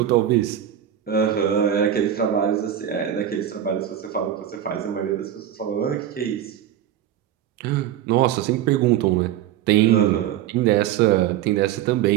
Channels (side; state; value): left; quieter; 10.9 dB